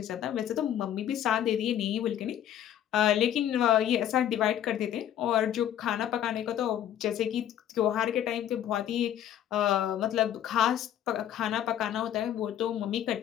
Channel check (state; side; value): quieter; right; 10.8 dB